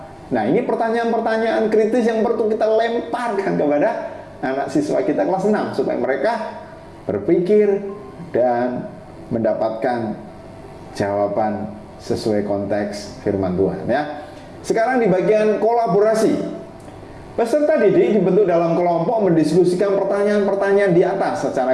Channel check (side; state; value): both; identical; correlation 1.00